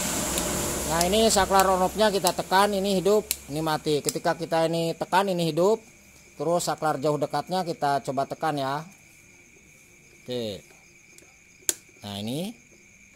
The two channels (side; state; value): both; identical; correlation 1.00